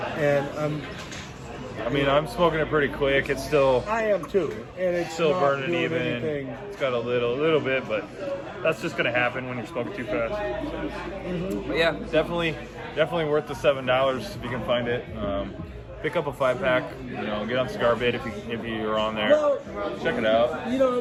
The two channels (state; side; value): identical; both; correlation 1.00